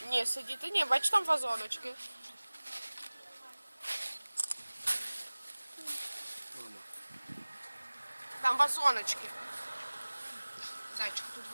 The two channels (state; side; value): inverted; both; correlation -1.00